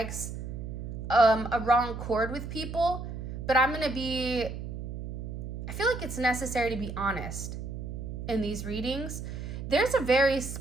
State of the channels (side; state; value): right; noise; hum, 7 dB below the sound